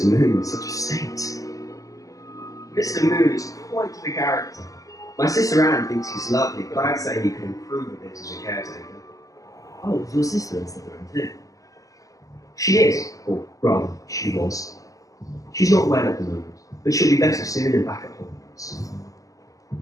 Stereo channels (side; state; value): right; late; 0.17 ms